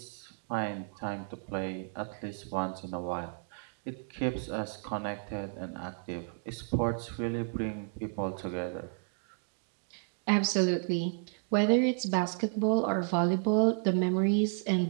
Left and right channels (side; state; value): left; silent; digital silence